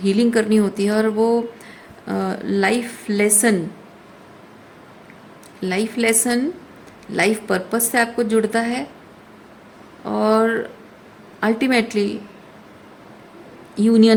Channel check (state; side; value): identical; both; correlation 1.00